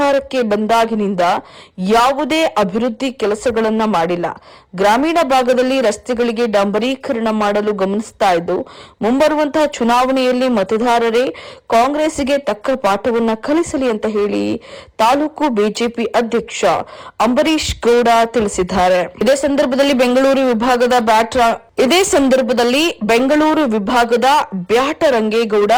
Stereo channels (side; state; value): both; identical; correlation 1.00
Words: ಬಂದಾಗಿನಿಂದ ಯಾವುದೇ ಅಭಿವೃದ್ಧಿ ಕೆಲಸಗಳನ್ನ ಮಾಡಿಲ್ಲ. ಗ್ರಾಮೀಣ ಭಾಗದಲ್ಲಿ ರಸ್ತೆಗಳಿಗೆ ಡಾಂಬರೀಕರಣ ಮಾಡಲು ಗಮನಿಸ್ತಾ ಇದ್ದು, ಮುಂಬರುವಂತಹ ಚುನಾವಣೆಯಲ್ಲಿ ಮತದಾರರೇ ಕಾಂಗ್ರೆಸ್ಗೆ ತಕ್ಕ ಪಾಠವನ್ನ ಕಲಿಸಲಿ ಅಂತ ಹೇಳಿ ತಾಲೂಕು ಬಿಜೆಪಿ ಅಧ್ಯಕ್ಷ ಅಂಬರೀಶ್ ಗೌಡ ತಿಳಿಸಿದ್ದಾರೆ. ಇದೇ ಸಂದರ್ಭದಲ್ಲಿ ಬೆಂಗಳೂರು ವಿಭಾಗದ ಬ್ಯಾಟ ರಂಗೇಗೌಡ,